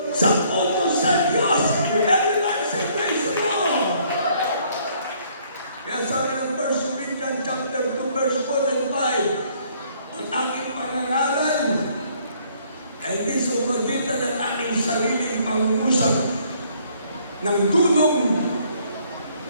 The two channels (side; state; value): both; inverted; correlation -0.64